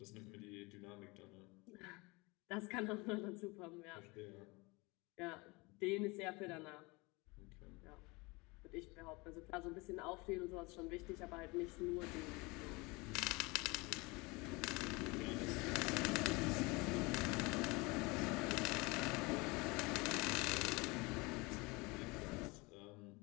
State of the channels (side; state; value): right; quieter; 25.5 dB